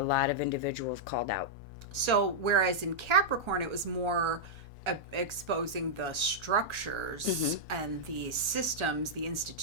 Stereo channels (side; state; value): left; late; 1.4 ms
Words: lot of individuals called out. So whereas in Capricorn, it was more exposing the structures and the systems, the